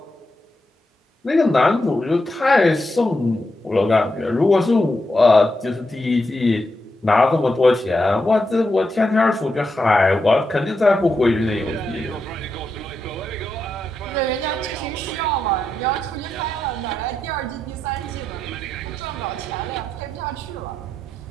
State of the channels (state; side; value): normal; both; correlation 0.85